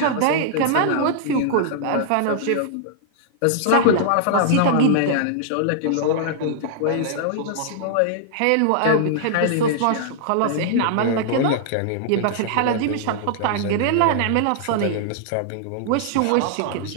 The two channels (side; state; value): both; different; correlation -0.01